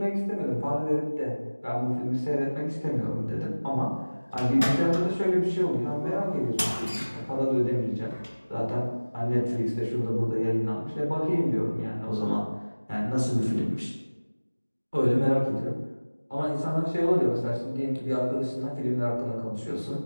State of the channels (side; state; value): both; inverted; correlation -1.00